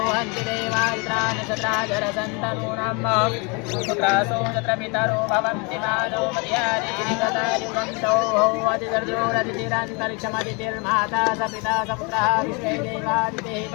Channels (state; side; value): quieter; right; 31.1 dB